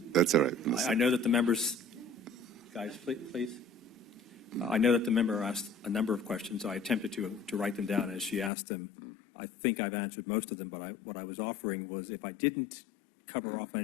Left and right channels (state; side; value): drops out; right; at 8.5 s